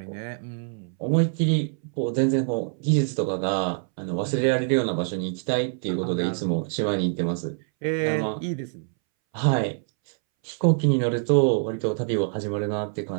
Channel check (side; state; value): left; silent; 62 dB below the other